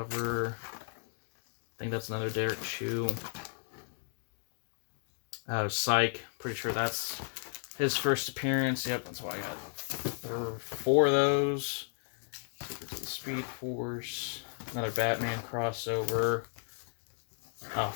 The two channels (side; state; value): right; silent; 55 dB below the other